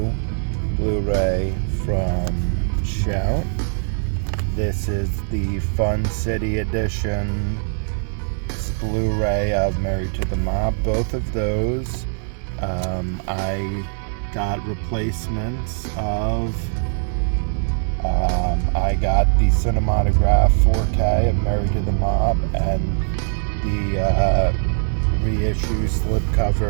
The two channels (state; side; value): silent; left; 65 dB below the other